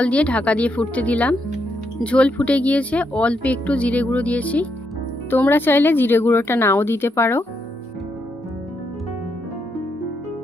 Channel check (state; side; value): normal; both; correlation 0.79